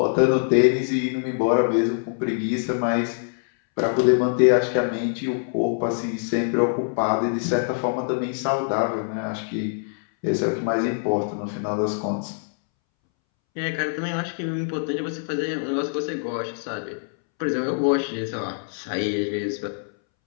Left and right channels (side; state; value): right; silent; 63 dB below the other